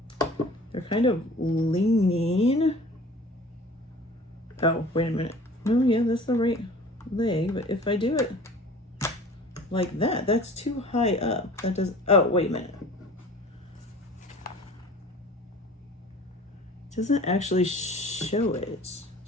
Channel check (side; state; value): both; normal; correlation 0.44